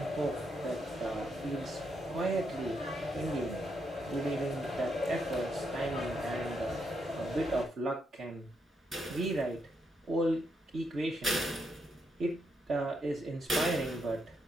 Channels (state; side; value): normal; both; correlation 0.79